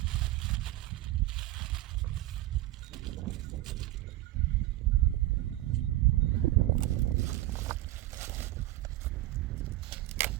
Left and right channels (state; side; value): quieter; left; 16.6 dB